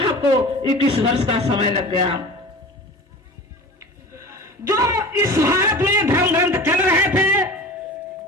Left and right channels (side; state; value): both; normal; correlation 0.36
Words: को 21 वर्ष का समय लग गया। जो इस भारत में धर्म ग्रंथ चल रहे थे,